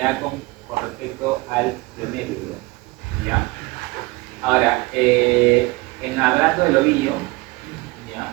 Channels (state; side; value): quieter; left; 22.8 dB